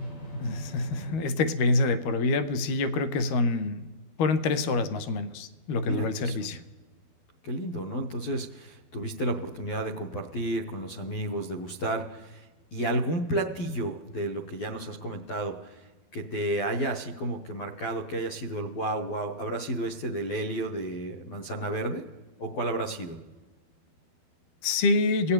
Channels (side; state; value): right; late; 12 ms